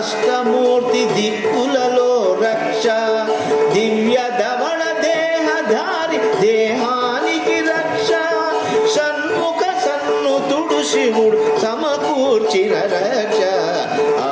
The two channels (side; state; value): both; identical; correlation 1.00